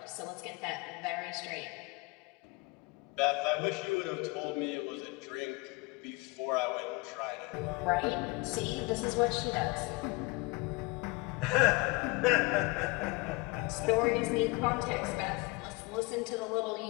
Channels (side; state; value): right; quieter; 25.8 dB